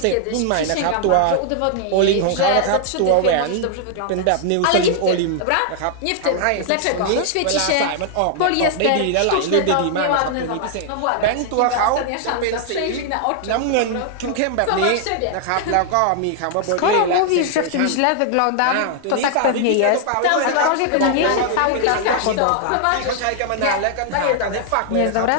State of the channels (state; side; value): different; both; correlation 0.00